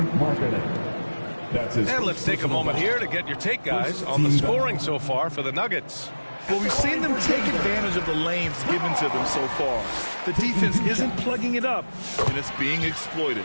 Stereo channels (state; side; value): inverted; both; correlation -1.00